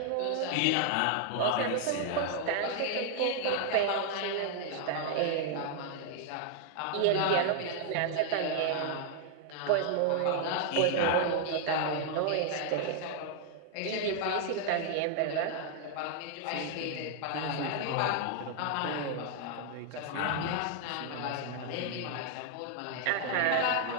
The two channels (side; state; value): both; different; correlation 0.00